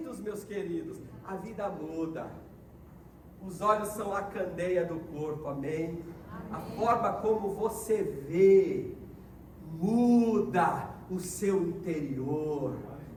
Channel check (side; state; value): both; identical; correlation 1.00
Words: meus queridos. A vida muda, os olhos são a candeia do corpo, amém? A forma como você vê muda o seu interior.